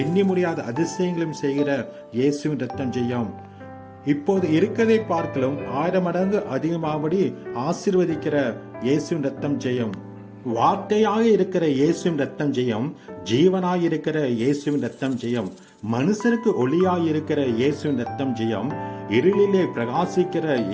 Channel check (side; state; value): both; identical; correlation 1.00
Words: முடியாத அதிசயங்களையும் செய்கிற இயேசுவின் ரத்தம் ஜெயம். இப்போது இருக்கதை பார்க்கலும் 1000 மடங்கு அதிகமாகபடி ஆசீர்வதிக்கிற இயேசுவின் ரத்தம் ஜெயம். வார்த்தையாக இருக்கிற இயேசுவின் ரத்தம் ஜெயம். ஜீவனாய் இருக்கிற இயேசுவின் ரத்தம் ஜெயம். மனுஷருக்கு ஒளியாய் இருக்கிற இயேசுவின் ரத்தம் ஜெயம். இருளிலே பிரகாசிக்கிற